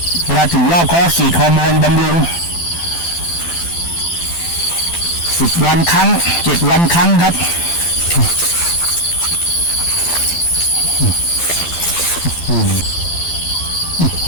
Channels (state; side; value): late; right; 12 ms